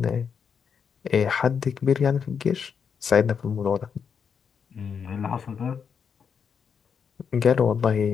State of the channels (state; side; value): quieter; right; 6.8 dB